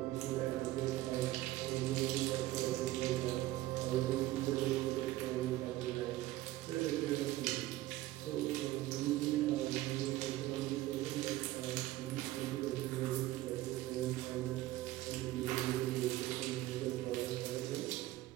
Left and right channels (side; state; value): left; quieter; 16.4 dB